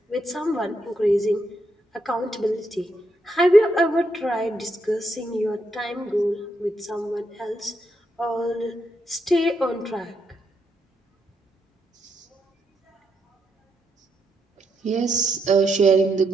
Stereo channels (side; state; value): both; normal; correlation 0.80